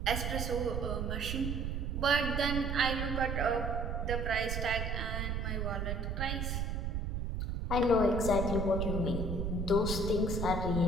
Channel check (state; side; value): noise; right; rumble, 1 dB below the sound